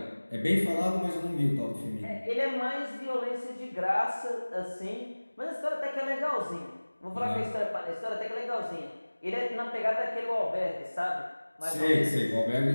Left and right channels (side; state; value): both; inverted; correlation -1.00